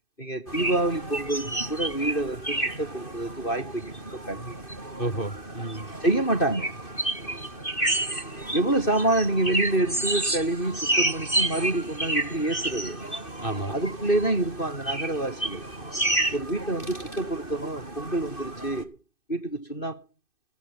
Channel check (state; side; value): late; right; 2.6 ms